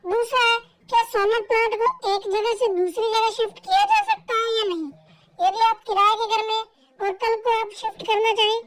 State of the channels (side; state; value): both; identical; correlation 1.00